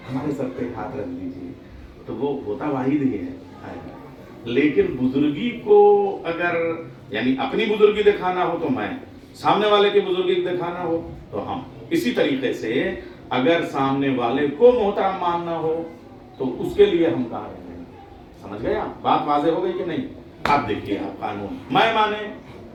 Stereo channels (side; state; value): both; identical; correlation 1.00